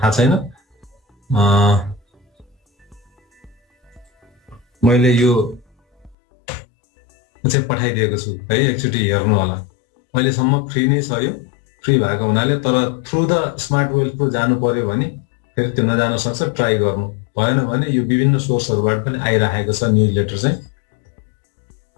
थाहा छैन। मैले यो चाहिँ पठाइदिएको छु है, एकचोटि हेर्नु होला। अहिलेसम्म फ्री नै छ, यो फ्री भएको हुनाले। तर through the smart wealth pro जानु पर्यो भने फेरि त्यो नजान सक्छ, ट्राई गर्नु भएन भने यो विभिन्न सोर्सहरूबाट पनि आइरहेको छ न्युज लेटर चाहिँ।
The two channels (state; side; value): drops out; right; at 6.2 s